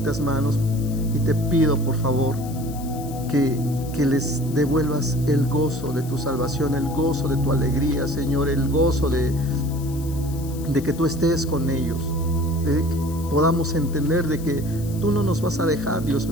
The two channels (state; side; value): noise; left; hiss, 18 dB below the sound